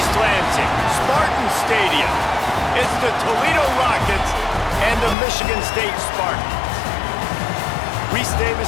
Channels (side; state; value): right; drops out; at 5.2 s